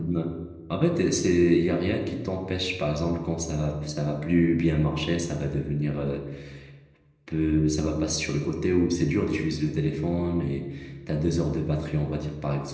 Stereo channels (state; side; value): identical; both; correlation 1.00